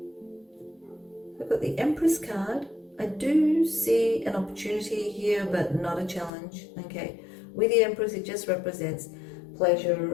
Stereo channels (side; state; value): right; drops out; at 6.3 s